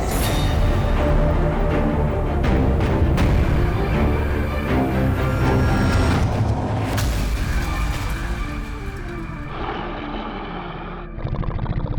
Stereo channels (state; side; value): identical; both; correlation 1.00